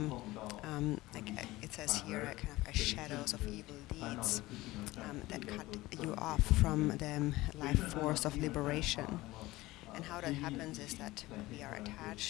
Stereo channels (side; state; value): right; quieter; 18.8 dB